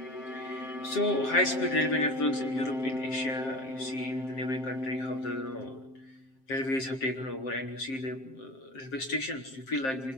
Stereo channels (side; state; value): right; late; 7.6 ms